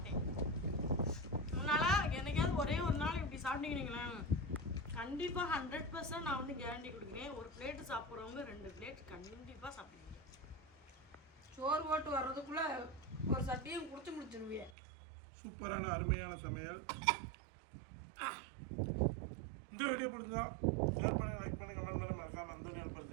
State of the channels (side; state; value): left; drops out; at 14.8 s